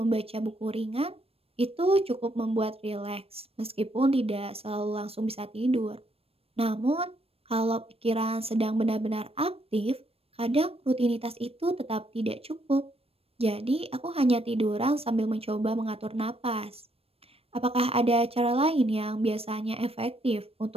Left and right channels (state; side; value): late; left; 0.28 ms